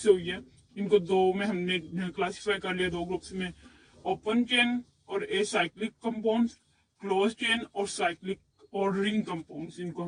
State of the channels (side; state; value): both; identical; correlation 1.00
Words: हुई है। इनको दो में हमने क्लासिफाई कर लिया, दो ग्रुप्स में, ओपन चेन और एसाइक्लिक कंपाउंड्स, क्लोज चेन और साइक्लिक और रिंग कंपाउंड्स इनको